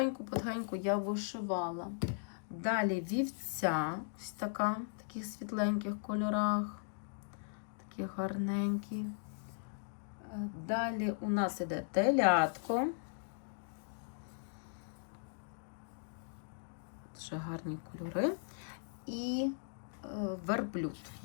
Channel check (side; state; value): right; silent; digital silence